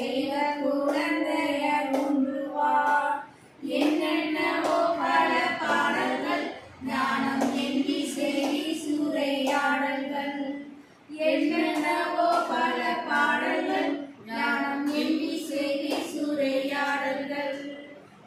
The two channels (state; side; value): identical; both; correlation 1.00